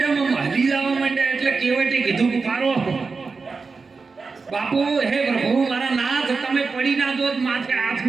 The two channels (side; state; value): left; quieter; 4.5 dB